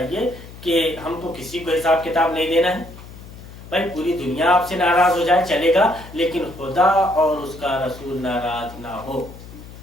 کہ ہم کو کسی کو حساب کتاب نہیں دینا ہے. بھائی پوری دنیا آپ سے ناراض ہو جائے چلے گا, لیکن خدا اور اس کا رسول ناراض نہ ہو.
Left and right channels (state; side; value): noise; left; hum, 16 dB below the sound